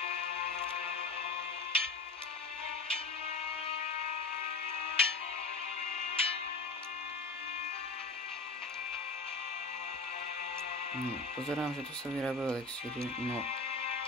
Pozerám, že tu sa vyrábajú elixíry, no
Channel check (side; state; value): right; quieter; 3.7 dB